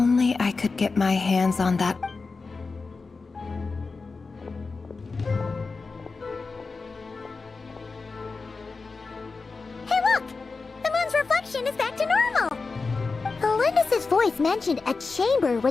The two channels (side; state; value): right; quieter; 4.2 dB